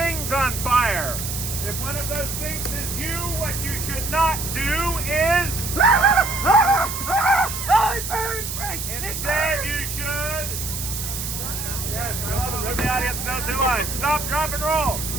on fire. If one of those things is you, what you should not do is... Oh, it burns, Frank! Instead, you should... Yes, I love it. Let the audience know too much. Stop, drop, and roll.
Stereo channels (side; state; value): right; noise; hiss, 5 dB below the sound